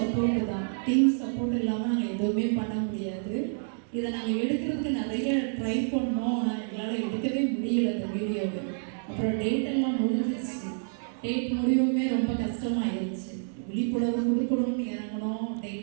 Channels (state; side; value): silent; left; digital silence